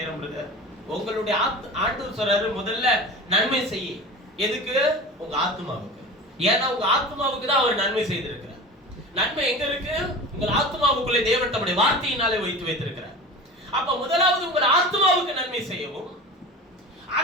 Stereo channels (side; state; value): both; normal; correlation 0.34